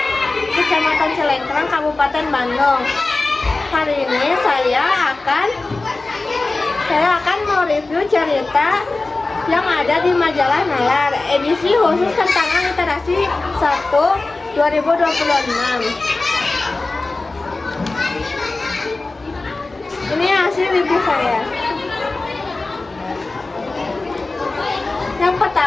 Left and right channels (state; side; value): quieter; right; 3.3 dB